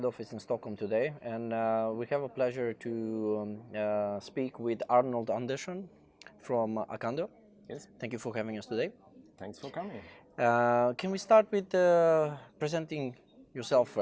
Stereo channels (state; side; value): identical; both; correlation 1.00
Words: office in Stockholm today, and we have a pleasure to speak with Arnold Andersson from Acando. Yes, Thank you for having us today. thanks for coming. Can we start with presenting yourself